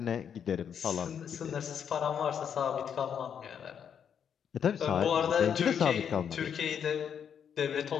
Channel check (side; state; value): right; quieter; 8.0 dB